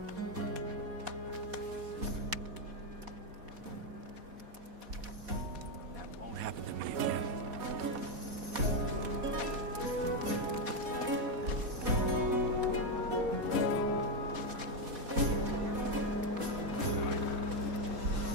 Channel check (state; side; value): late; left; 4.1 ms